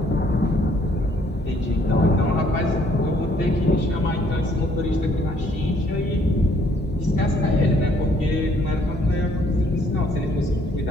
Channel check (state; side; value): normal; both; correlation 0.65